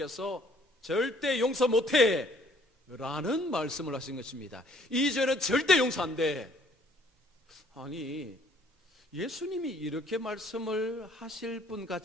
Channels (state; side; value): normal; both; correlation 0.61